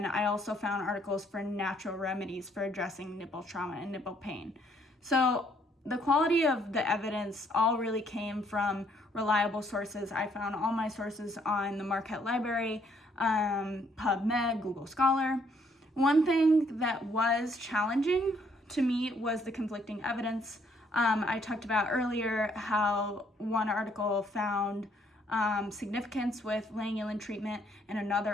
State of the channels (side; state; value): both; normal; correlation 0.67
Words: I also found articles for natural remedies for addressing nipple trauma and nipple pain. So the quality of the evidence all really came from reliable sources. I found all my sources on the Marquette Library, PubMed, Google Scholar. One thing that was challenging to me was the conflicting evidence. I talked about earlier how one article found significance with Lanolin treatment and